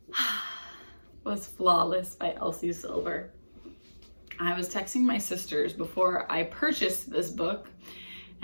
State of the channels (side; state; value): both; inverted; correlation -1.00